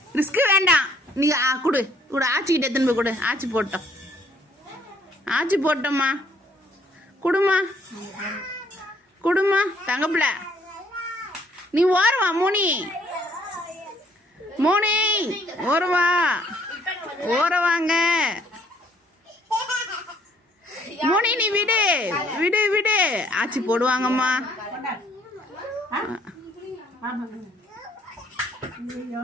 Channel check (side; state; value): both; normal; correlation 0.64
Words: ரிஸ்க் வேண்டாம். நீ கொடு கொடு ஆச்சிக்கிட்ட எத்தனை போய் கொடு. ஆச்சி போட்டோம். ஆச்சி போட்டோம்மா. குடுமா குடுமா தங்கப்பிள்ள. நீ ஓரவா மோனி. மோனி ஓரவா ஓரவாங்க. மோனி நீ விடு விடு விடு. ஆச்சி போடுவாங்கம்மா.